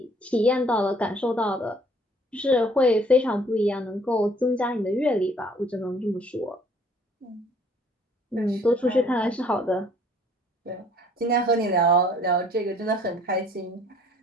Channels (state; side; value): normal; both; correlation 0.58